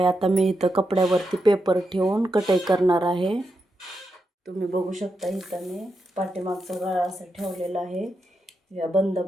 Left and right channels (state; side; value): normal; both; correlation 0.85